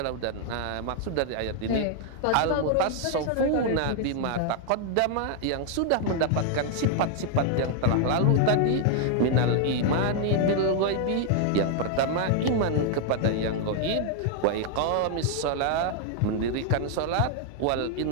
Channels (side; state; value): both; different; correlation 0.00